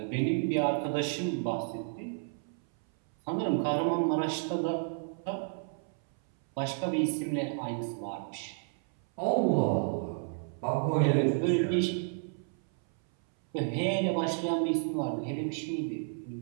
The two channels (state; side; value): silent; left; 57 dB below the other